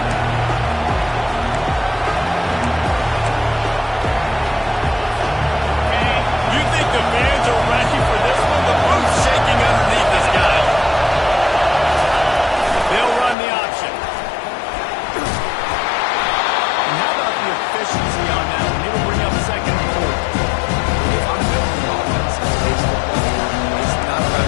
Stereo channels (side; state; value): right; drops out; at 13.4 s